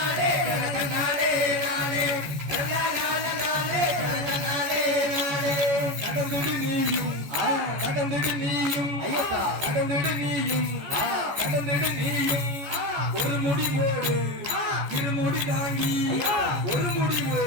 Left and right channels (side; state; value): left; late; 14 ms